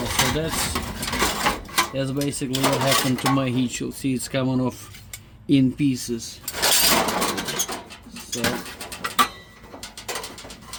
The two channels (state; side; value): identical; both; correlation 1.00